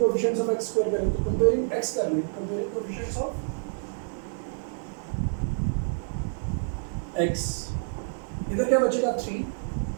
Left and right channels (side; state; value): left; silent; 59 dB below the other